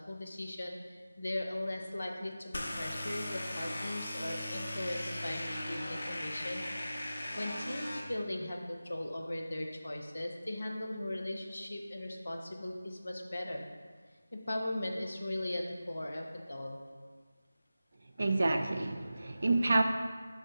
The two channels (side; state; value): both; inverted; correlation -0.95